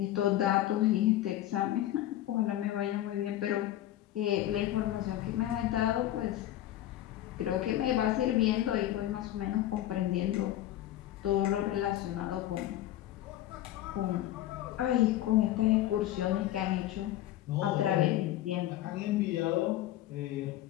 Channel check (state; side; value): quieter; right; 13.6 dB